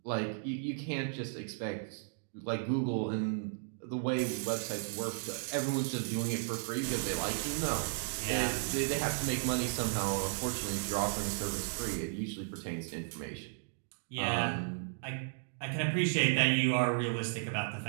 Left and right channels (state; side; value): silent; left; digital silence